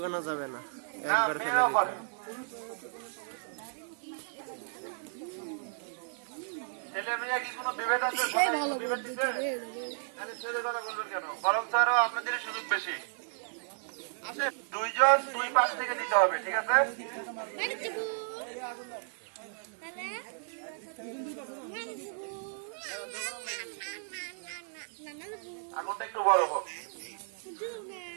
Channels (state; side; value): silent; left; digital silence